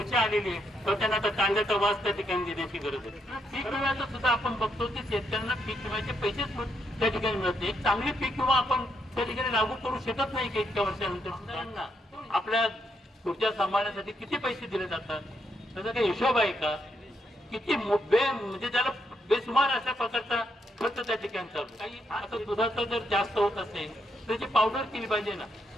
आलेली आहे तर त्यांना आता कांद्याचा वास त्या ठिकाणी देण्याची गरज आहे. पीक विम्याचं सुद्धा आपण बघतो की शेतकऱ्यांना पीक विम्याचे पैसेच त्या ठिकाणी मिळत नाही. एक चांगली पीक विमा आपण त्या ठिकाणी लागू करू शकत नाही की इतक्या वर्षानंतर सुद्धा आपल्या पुढच्या सांभाळण्यासाठी किती पैसे दिले जातात त्याचा काही हिशोब आहे का? किती म्हणजे त्याला बेसुमार अशा प्रकारचा खर्च त्या ठिकाणी चालू. काही आता दुधाचं जर जास्त होत असेल तर त्याची पावडर केली पाहिजे ना.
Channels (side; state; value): both; normal; correlation 0.78